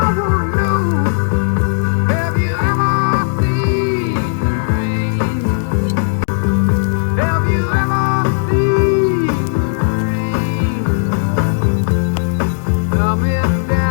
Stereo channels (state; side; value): silent; right; digital silence